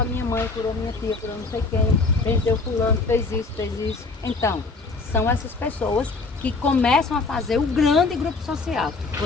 minha mãe, curou minha tia, curou não sei quem, benzeu fulano, fez isso, fez isso. Então, são essas pessoas que começam a fazer o grande grupo social.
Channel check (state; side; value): quieter; right; 3.9 dB